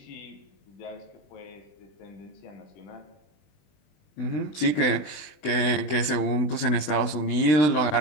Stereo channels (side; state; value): right; late; 20 ms